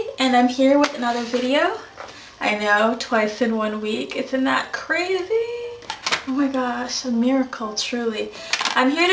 and I'm here with another video. I know, twice in 1 week. Isn't that crazy? Oh my gosh, a miracle, truly. I'm here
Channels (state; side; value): identical; both; correlation 1.00